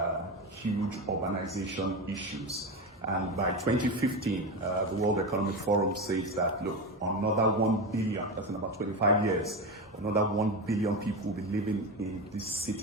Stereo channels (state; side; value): normal; both; correlation 0.19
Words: huge urbanization issues. And by 2015, the World Economic Forum says that, look, another 1 billion, that's in about 25 years, another 1 billion people will be living in these